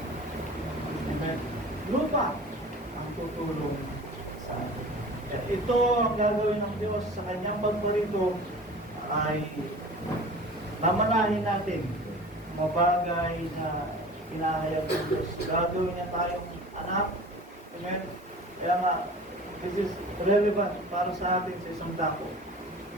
Amen. Lupa ang tutulong sa atin. Ito ang gagawin ng Diyos sa kanyang pagparito ay mamanahin natin mga bagay na hinahayag ng Diyos. Gagawin niya tayong anak. Amen. Kaya nga, this is relevant para sa atin sa isang dako.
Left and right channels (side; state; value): both; normal; correlation 0.40